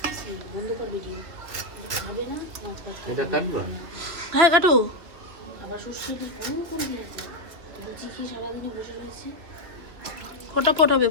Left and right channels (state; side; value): late; left; 2.8 ms